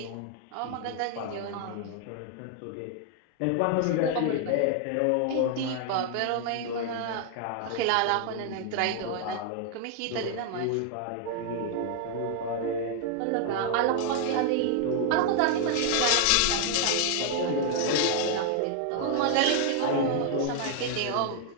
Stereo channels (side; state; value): both; different; correlation 0.00